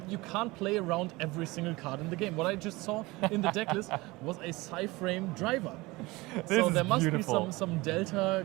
you can't play around every single card in the game. What I just saw in the deck list was a Psy-Frame driver. So there must be some Delta,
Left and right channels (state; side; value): quieter; left; 22.0 dB